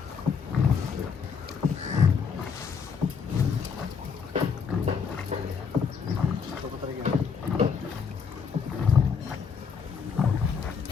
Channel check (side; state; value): right; quieter; 6.1 dB